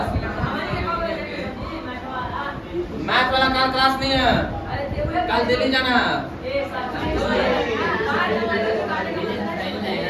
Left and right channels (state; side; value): identical; both; correlation 1.00